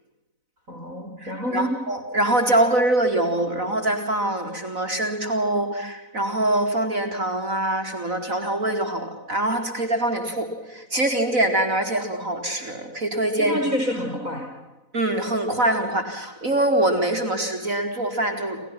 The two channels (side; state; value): left; late; 4.0 ms